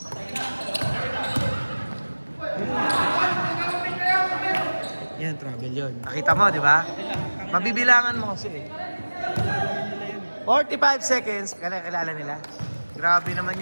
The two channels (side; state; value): both; inverted; correlation -1.00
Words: Yan, travel yun. Nakita mo, di ba? Mabibilangan mo kasi eh. 45 seconds. Kilala nila. Grabe naman